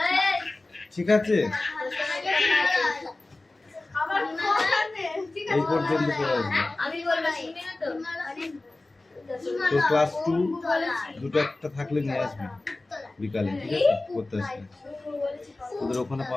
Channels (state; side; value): quieter; right; 3.0 dB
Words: ঠিক আছে? এই পর্যন্ত পড়ে আসবে। তো ক্লাস 2 দুটো একটা থাকলে নিয়ে আসবে বিকালে, ঠিক আছে? করতে আসবে ওদের ওখানে